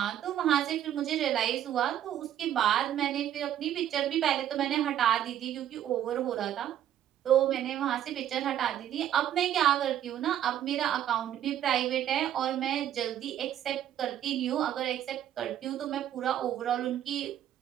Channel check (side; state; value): left; quieter; 11.1 dB